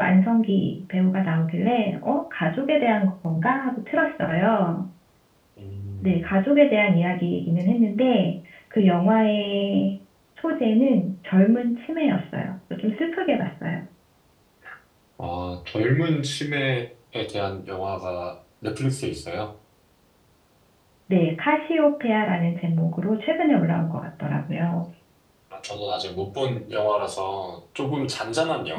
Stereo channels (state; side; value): identical; both; correlation 1.00